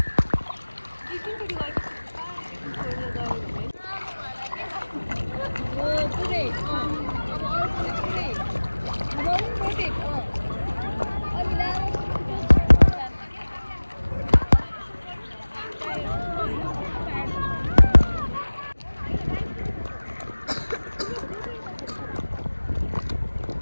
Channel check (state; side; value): inverted; both; correlation -1.00